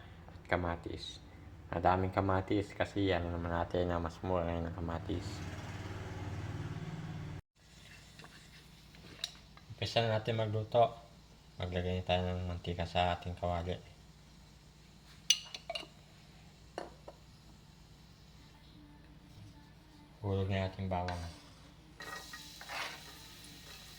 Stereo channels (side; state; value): both; identical; correlation 1.00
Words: at kamatis. Madaming kamatis kasi yan naman natin na mas mura ngayon ng kamatis. Umpisa na natin magluto. Maglagay tayo ng mantika sa ating kawali. Hulog na ating bawang.